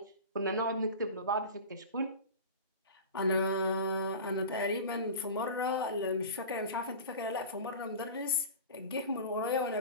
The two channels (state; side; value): inverted; both; correlation -0.32